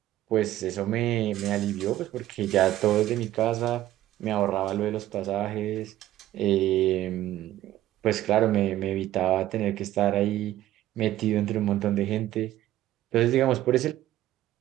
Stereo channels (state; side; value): quieter; left; 14.0 dB